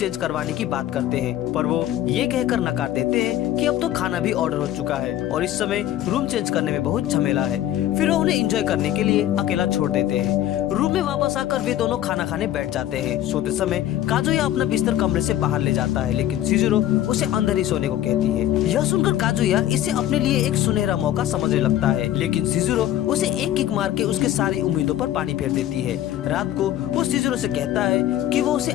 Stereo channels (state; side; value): quieter; right; 12.6 dB